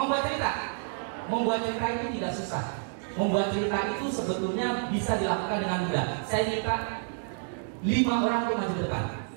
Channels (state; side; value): silent; left; digital silence